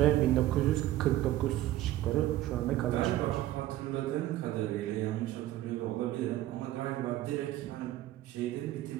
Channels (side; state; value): left; quieter; 14.7 dB